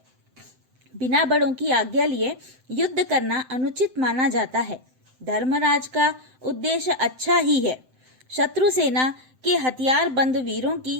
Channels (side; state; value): left; late; 7.8 ms